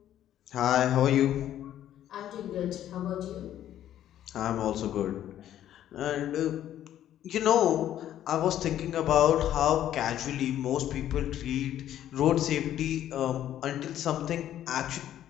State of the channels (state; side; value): quieter; right; 11.7 dB